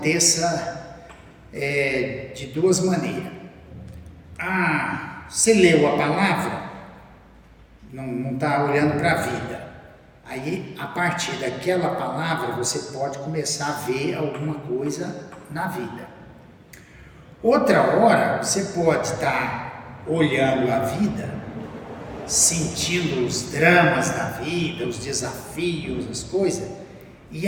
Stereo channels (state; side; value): identical; both; correlation 1.00